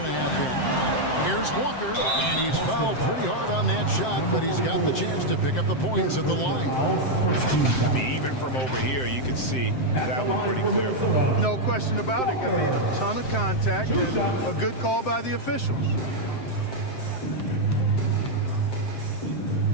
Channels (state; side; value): late; right; 7.7 ms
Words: and a half in. Here's Walker, and he's fouled pretty hard on that shot, but he's got the chance to pick up the points at the line. I mean, even from over here, you can see that one pretty clear. No question about it. I mean, a ton of contact and a good call by the officials.